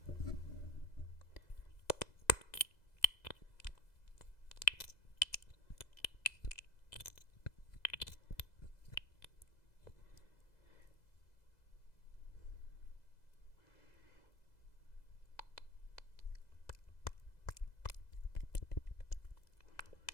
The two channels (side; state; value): right; late; 2.0 ms